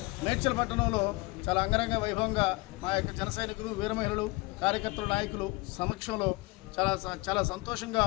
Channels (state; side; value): quieter; right; 23.9 dB